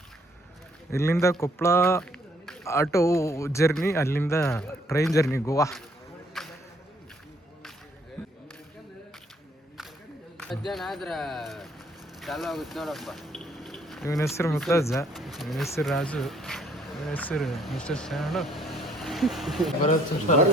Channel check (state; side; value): normal; both; correlation 0.65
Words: ಇಲ್ಲಿಂದ ಕೊಪ್ಪಳ ಆಟೋ ಜರ್ನಿ, ಅಲ್ಲಿಂದ ಟ್ರೈನ್ ಜರ್ನಿ ಗೋವಾ. ಇವನ ಹೆಸರು ಮುತ್ತಜ್ಜ, ಇವನ ಹೆಸರು ರಾಜು, ಇವನ ಹೆಸರು ಮಿಸ್ಟರ್ ಶಾಣು.